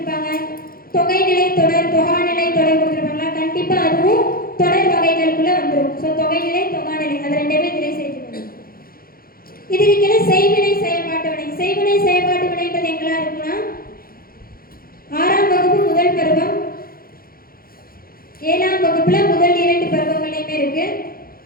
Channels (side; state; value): right; late; 0.43 ms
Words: தொகைநிலை தொடர், தொகாநிலை தொடர் கொடுத்துருப்பாங்களா, கண்டிப்பா அதுவும் தொடர் வகைகளுக்குள்ள வந்துடும். ஸோ தொகைநிலை, தொகாநிலை அது ரெண்டுமே இதிலே சேர்த்துக்கணும். இதுக்கு கீழே செய்வினை, செயல்பாட்டு வினை. செய்வினை, செயல்பாட்டு வினைன்றது எங்கெல்லாம் இருக்குன்னா 6ஆம் வகுப்பு முதல் பருவம், 7ஆம் வகுப்புல முதல் 2 பருவங்களையுமே இருக்கு.